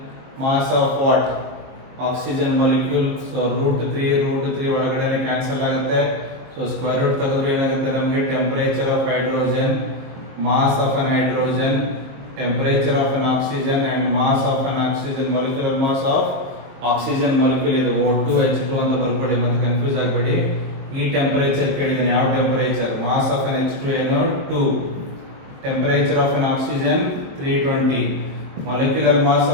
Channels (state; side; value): late; left; 23 ms